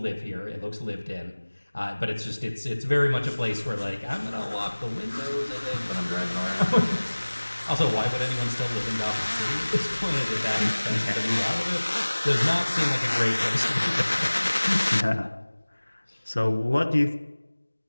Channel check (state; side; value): inverted; both; correlation -1.00